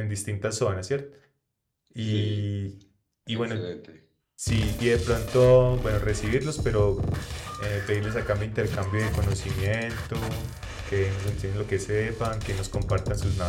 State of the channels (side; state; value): both; identical; correlation 1.00